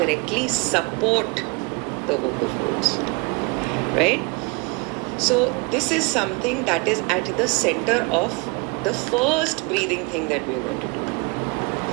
support the vocal folds, right? So this is something that is at the center of the first breathing thing that we are going to do.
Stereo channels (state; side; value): quieter; left; 28.2 dB